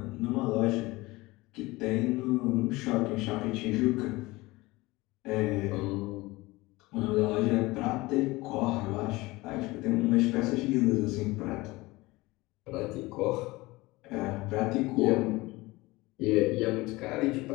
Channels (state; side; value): quieter; right; 21.1 dB